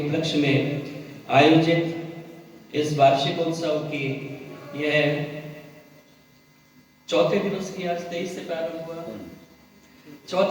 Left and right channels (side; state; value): both; identical; correlation 1.00